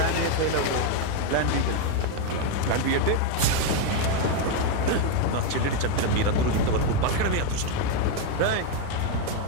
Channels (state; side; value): different; both; correlation 0.01